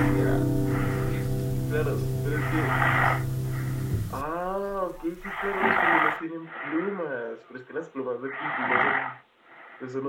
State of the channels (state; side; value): identical; both; correlation 1.00